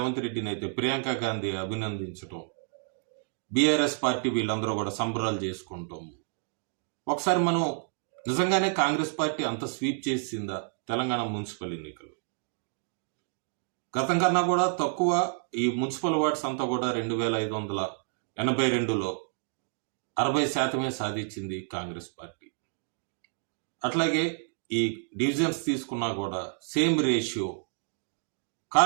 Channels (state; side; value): silent; left; 58 dB below the other